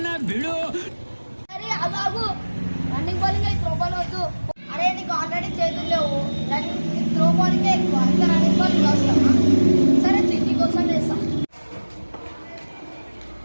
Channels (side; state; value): both; inverted; correlation -1.00